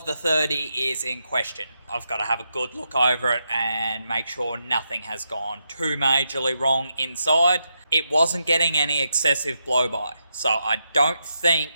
the 30 is in question. I've got to have a good look over it and make sure nothing has gone too majorly wrong inside. It wasn't getting any excessive blow-by, so I don't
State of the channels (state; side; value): inverted; both; correlation -0.84